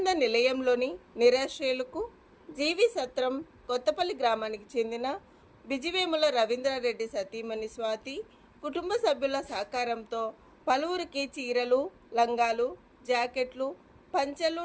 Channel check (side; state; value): both; identical; correlation 1.00